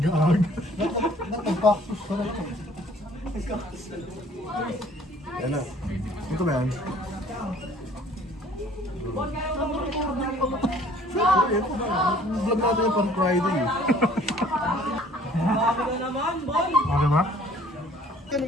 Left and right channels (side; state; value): both; normal; correlation 0.55